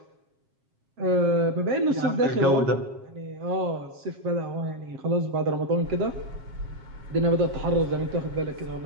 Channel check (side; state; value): left; late; 7.4 ms